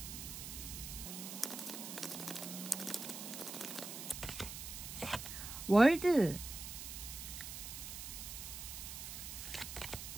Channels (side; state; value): right; noise; hiss, 8 dB below the sound